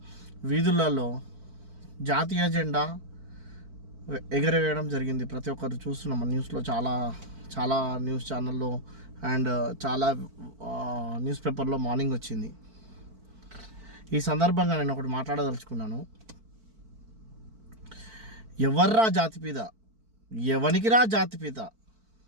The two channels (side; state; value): left; late; 4.5 ms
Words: వీధులలో జాతీయ జెండా ఎగరవేయడం జరిగింది. ప్రతి ఒక్కరు చూస్తున్నాం న్యూస్లో, చాలా న్యూస్ ఛానల్లో అండ్ చాలా న్యూస్ పేపర్లో మార్నింగ్ వచ్చింది. ఈ సందర్భంగా నేను ఒకటి మాట్లాడదలుచుకున్నాను. ఎవర్రా జాతిపిత, ఎవనికిరా జాతిపిత